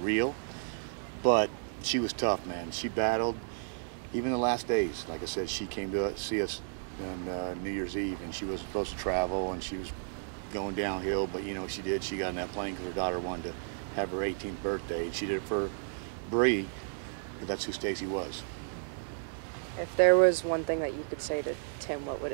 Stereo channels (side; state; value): left; silent; digital silence